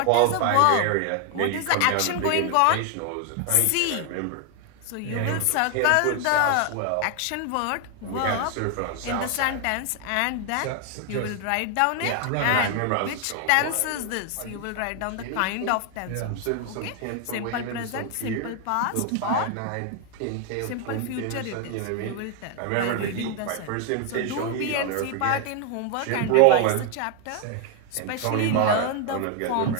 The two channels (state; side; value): different; both; correlation 0.00